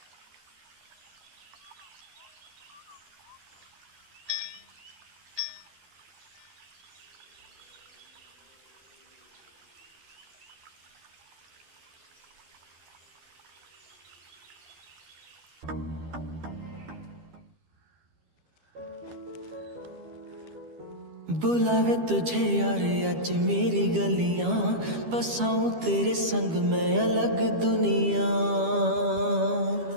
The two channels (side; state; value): left; late; 12 ms